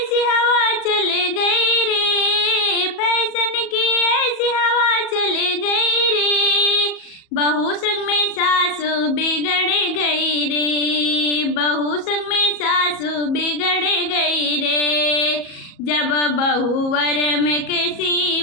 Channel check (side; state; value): right; late; 37 ms